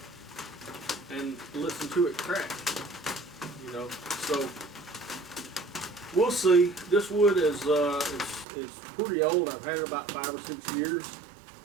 listened to it crack. You know, so we'll see. This wood is it's pretty old. I've had it about 5 or 6 years,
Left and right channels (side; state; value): left; drops out; at 8.5 s